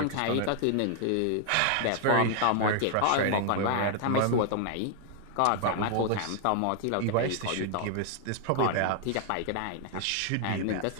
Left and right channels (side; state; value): both; different; correlation 0.00